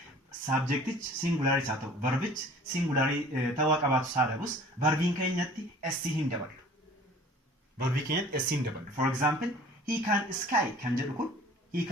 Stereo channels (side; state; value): both; normal; correlation 0.48